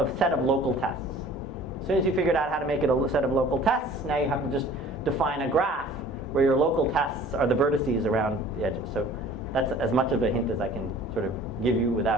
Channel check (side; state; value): both; normal; correlation 0.48